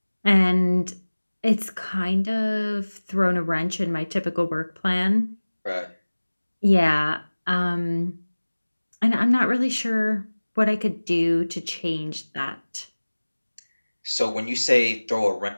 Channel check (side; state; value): both; inverted; correlation -1.00